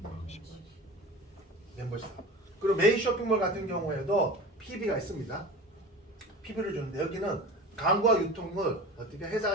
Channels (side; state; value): both; normal; correlation 0.34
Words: 멤버십 사업. 그리고 메인 쇼핑몰 같은 경우에도 PB가 있습니다. PB를 주는데 여기는 광고와 유통을 어떻게